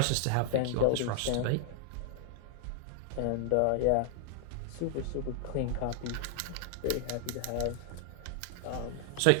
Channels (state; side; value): different; both; correlation 0.00